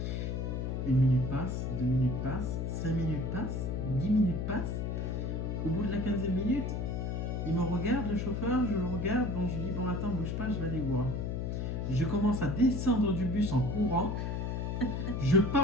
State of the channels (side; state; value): left; noise; hum, 1 dB below the sound